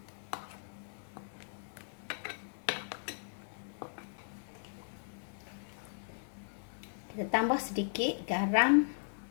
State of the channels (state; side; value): silent; right; 53 dB below the other